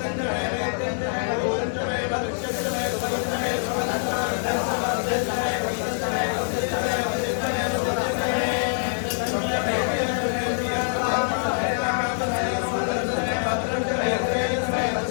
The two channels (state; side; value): silent; right; digital silence